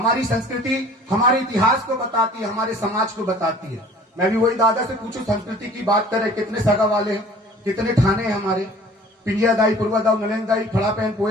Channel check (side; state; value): both; normal; correlation 0.49